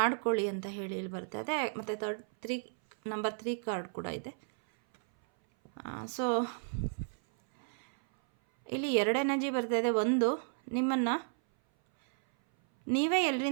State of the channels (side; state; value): left; silent; 56 dB below the other